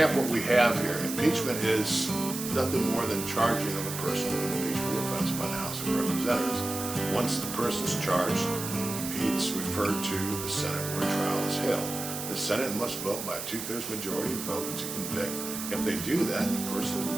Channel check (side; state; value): right; noise; hiss, 7 dB below the sound